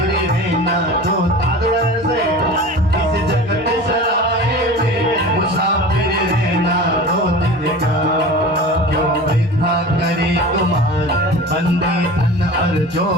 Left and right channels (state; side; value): normal; both; correlation 0.36